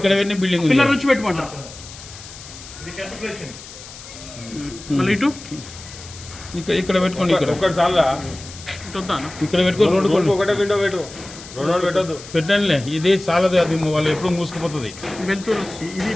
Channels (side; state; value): left; noise; hiss, 16 dB below the sound